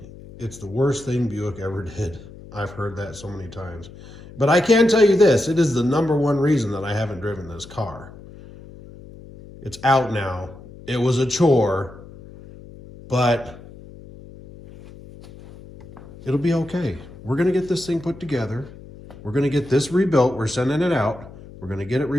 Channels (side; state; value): left; noise; hum, 18 dB below the sound